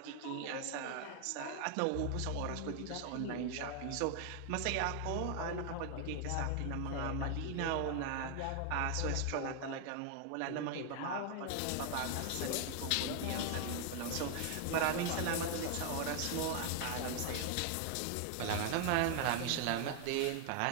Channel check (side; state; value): both; different; correlation 0.00